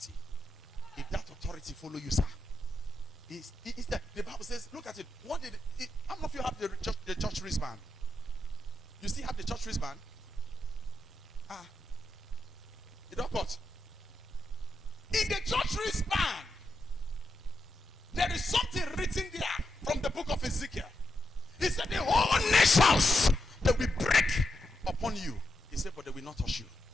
If that authority follow you, sir, is that the Bible says, look at it. What did it, how many of you have the church wristband? You still have the church wristband? You don't cut. In the church wristband, there is something written there from the book of Ezekiel. He said, the whole nations, they will break upon you. He said, but they will not touch you.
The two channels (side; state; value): both; normal; correlation 0.85